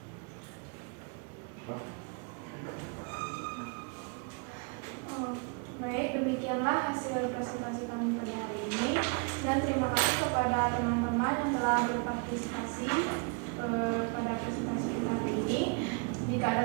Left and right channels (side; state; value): left; quieter; 35.8 dB